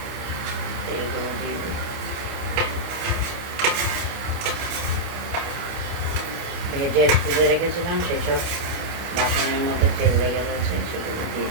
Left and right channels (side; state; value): left; late; 29 ms